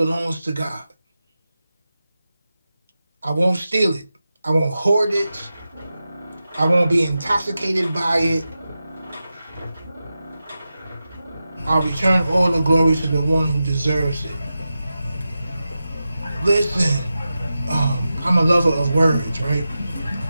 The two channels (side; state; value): both; inverted; correlation -0.92